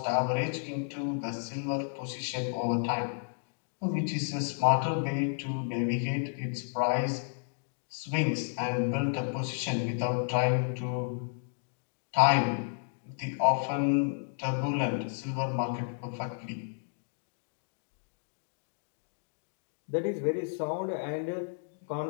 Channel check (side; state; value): right; silent; digital silence